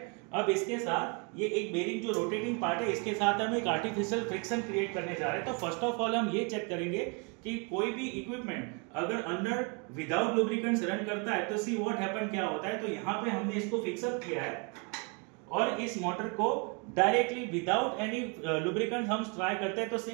अब इसके साथ ये एक बेरिंग जो रोटेटिंग पार्ट है, इसके साथ हम एक आर्टिफिशियल फ्रिक्शन क्रिएट करने जा रहे हैं। तो फर्स्ट ऑफ ऑल हम ये चेक करेंगे कि कोई भी इक्विपमेंट अगर अंडर विदाउट लुब्रिकेंट्स रन करता है तो सी व्हाट हैपन, क्या होता है। तो यहाँ पे हमने इसको फिक्सअप किया है और इस मोटर को डायरेक्टली विदाउट एनी लुब्रिकेंट हम ट्राई करते हैं तो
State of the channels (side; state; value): left; quieter; 33.5 dB